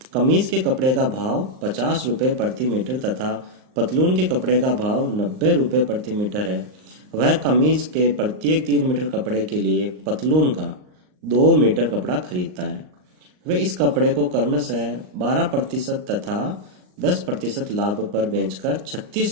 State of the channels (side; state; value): left; late; 38 ms